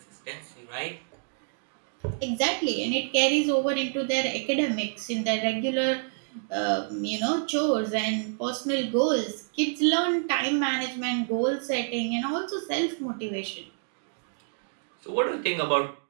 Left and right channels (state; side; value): silent; left; digital silence